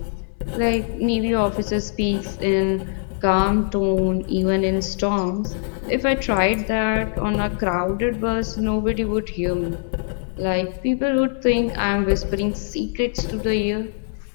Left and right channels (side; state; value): right; silent; digital silence